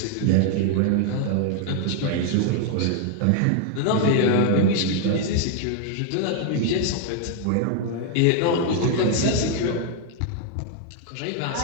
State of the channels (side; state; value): both; different; correlation 0.00